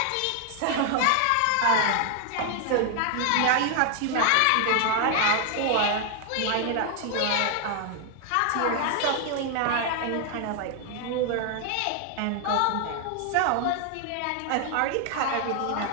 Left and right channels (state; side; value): different; both; correlation 0.00